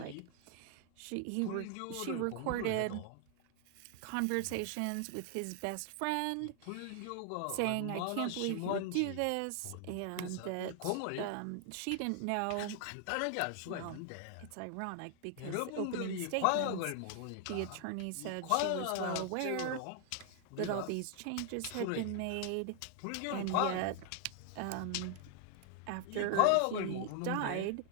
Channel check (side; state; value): both; different; correlation 0.00